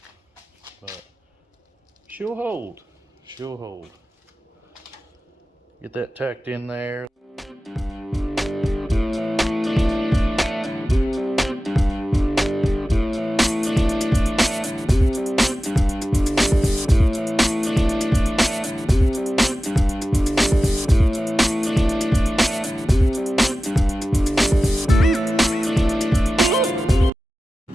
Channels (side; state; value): both; normal; correlation 0.95